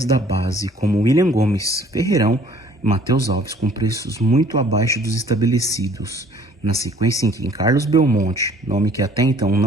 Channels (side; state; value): both; normal; correlation 0.56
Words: da base, como William Gomes, Ferreirão e Matheus Alves, com preços muito abaixo dos estabelecidos. Na sequência em que Carlos Belmonte, nome que até então